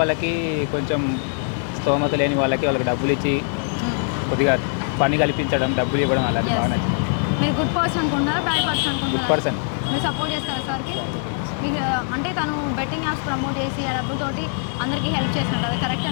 కొంచెం స్తోమత లేని వాళ్ళకి డబ్బులు ఇచ్చి కొద్దిగా పని కల్పించడం, డబ్బులు ఇవ్వడం అలా. మీరు గుడ్ పర్సన్ అనుకుంటున్నారా బ్యాడ్ పర్సన్ అనుకుంటున్నారా? పర్సన్. మీరు సపోర్ట్ చేస్తారా సార్కి? మీకు అంటే తను బెట్టింగ్ యాప్స్ ప్రమోట్ చేసి ఆ డబ్బులతోటి అందరికీ హెల్ప్ చేసినట్టు అది కరెక్ట్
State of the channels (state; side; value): silent; right; 55 dB below the other